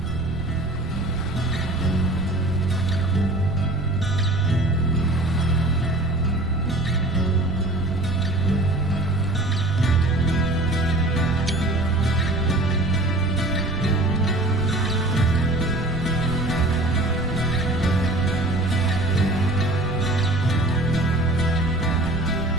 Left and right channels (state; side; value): noise; right; rumble, 8 dB below the sound